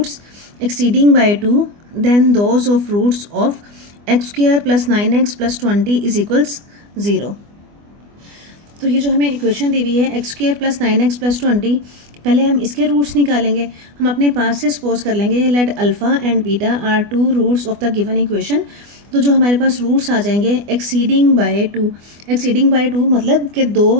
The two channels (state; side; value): late; left; 24 ms